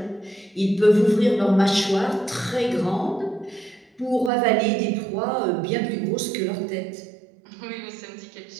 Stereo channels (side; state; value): left; drops out; at 4.3 s